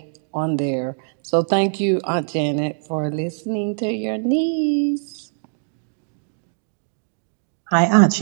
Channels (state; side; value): silent; left; digital silence